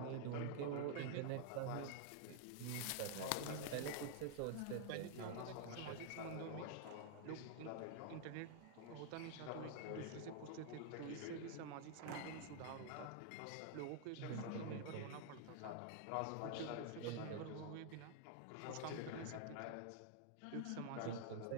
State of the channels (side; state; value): both; different; correlation 0.00